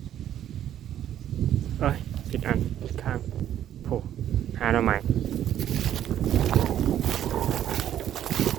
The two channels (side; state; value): left; quieter; 11.1 dB